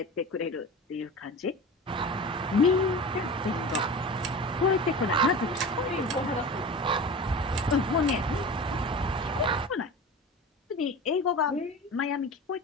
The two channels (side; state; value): both; normal; correlation 0.33